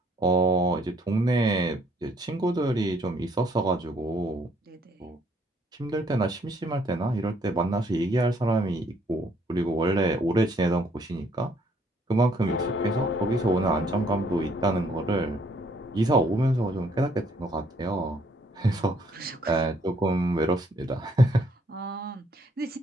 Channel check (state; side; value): normal; both; correlation 0.66